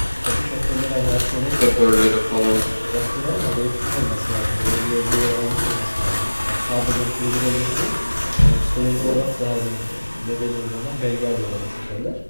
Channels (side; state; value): both; inverted; correlation -1.00